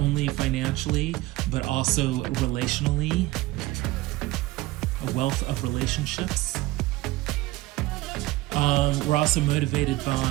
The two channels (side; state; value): left; quieter; 18.9 dB